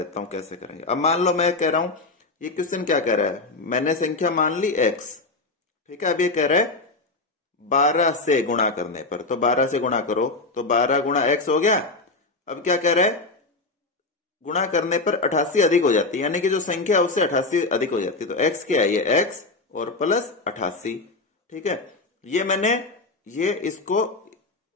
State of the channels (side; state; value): right; quieter; 3.4 dB